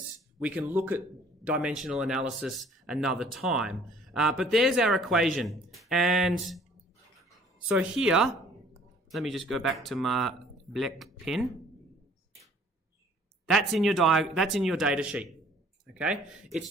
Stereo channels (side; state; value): both; normal; correlation 0.55